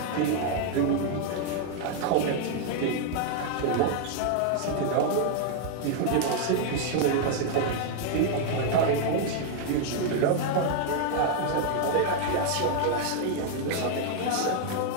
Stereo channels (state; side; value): different; both; correlation 0.00